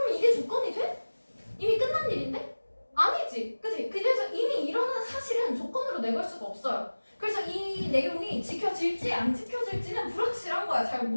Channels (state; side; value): inverted; both; correlation -1.00